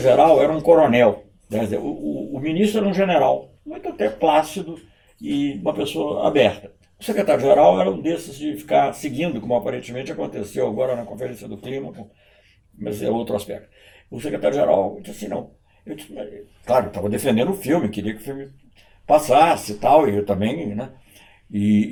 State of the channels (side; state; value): both; identical; correlation 1.00